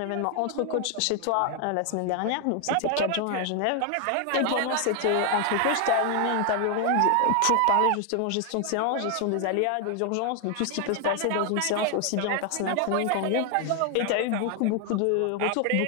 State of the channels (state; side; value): different; both; correlation 0.00